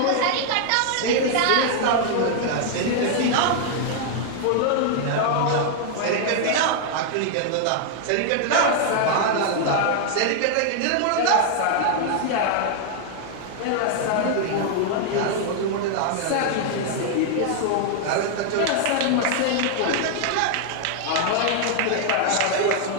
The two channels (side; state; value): both; different; correlation 0.00